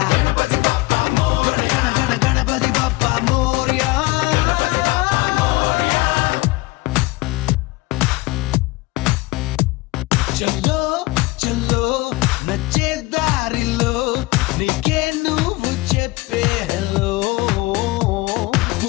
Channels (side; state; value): right; quieter; 21.5 dB